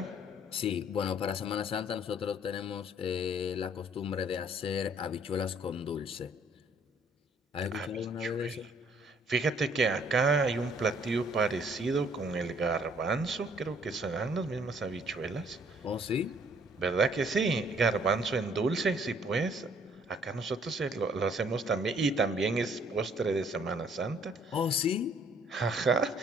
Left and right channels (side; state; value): both; normal; correlation 0.62